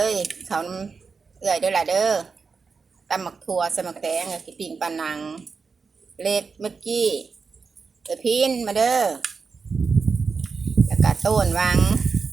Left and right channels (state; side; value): quieter; left; 5.0 dB